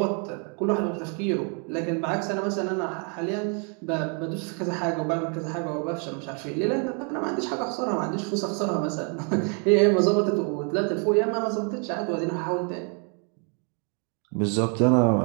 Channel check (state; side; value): quieter; left; 39.0 dB